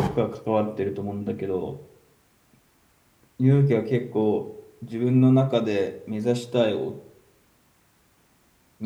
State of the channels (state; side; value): identical; both; correlation 1.00